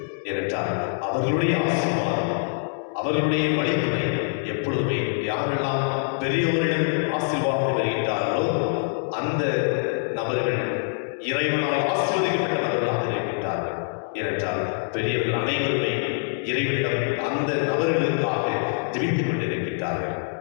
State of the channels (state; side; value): silent; right; digital silence